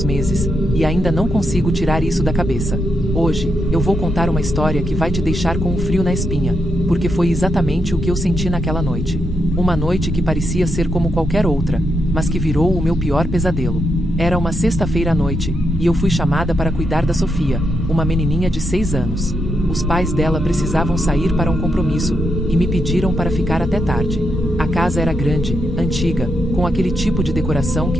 meses, e ainda não consigo tirar isso da cabeça. Hoje, eu vou contar uma história que vai te deixar com um frio na espinha, porque foi exatamente o que eu senti naquela noite. Uma noite que parecia ser como qualquer outra, mas que virou o meu pior pesadelo. Era uma sexta-feira à noite, e eu fui chamada para cuidar da Sofia, uma menininha de 6 anos. Os pais dela precisavam sair para um compromisso, e me pediram para ficar até tarde. A casa era grande, antiga, com aquele tipo de decoração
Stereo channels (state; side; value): normal; both; correlation 0.82